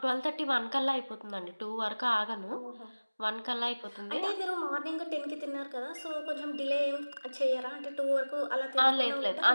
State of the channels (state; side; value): inverted; both; correlation -1.00